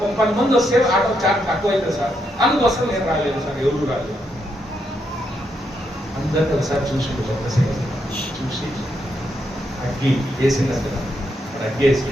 10 మంది వస్తే ఆటో ఛార్జ్ తక్కువ అవుతుంది సార్, అందుకోసం నేను రాలేదు సార్. ఎవరు రాలేదు. అందరినీ ఒకసారి చూసి చూసి అగ్గి వేసింది, అగ్గి వేసి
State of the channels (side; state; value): both; normal; correlation 0.79